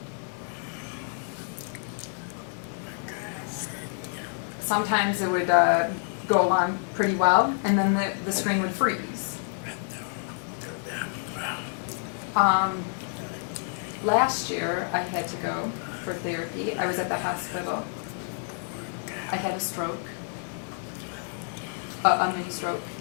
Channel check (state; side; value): silent; right; 59 dB below the other